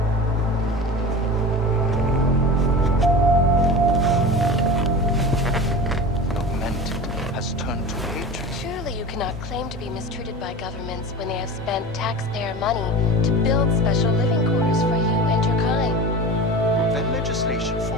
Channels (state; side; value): normal; both; correlation 0.32